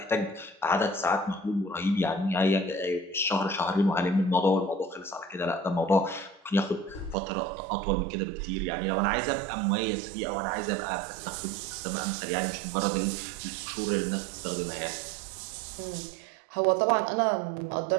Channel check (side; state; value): left; drops out; at 7.2 s